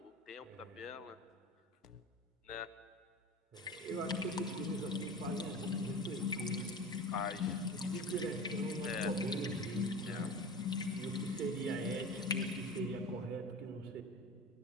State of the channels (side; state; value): both; normal; correlation 0.33